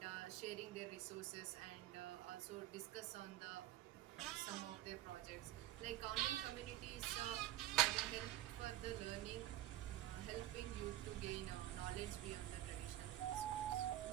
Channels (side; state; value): left; quieter; 13.9 dB